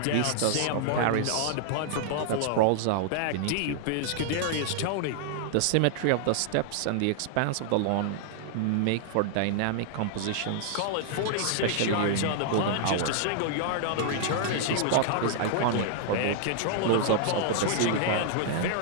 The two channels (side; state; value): both; different; correlation -0.01